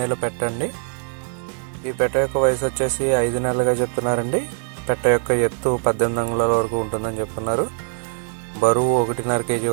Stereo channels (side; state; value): left; silent; 64 dB below the other